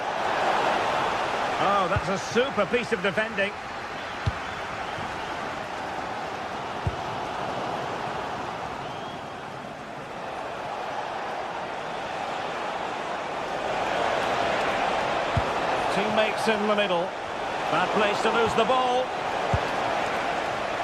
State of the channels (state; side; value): identical; both; correlation 1.00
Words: Oh, that's a super piece of defending. Teammates in the middle. Bad place to lose the ball.